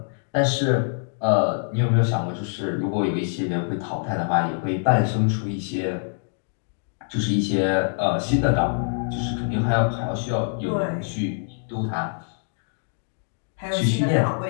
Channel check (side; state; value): right; silent; digital silence